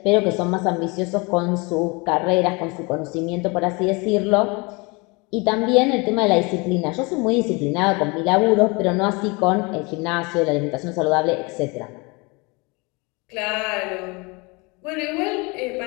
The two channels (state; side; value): quieter; right; 28.1 dB